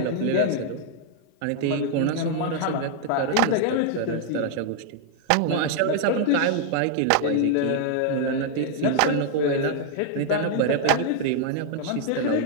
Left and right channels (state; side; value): different; both; correlation -0.01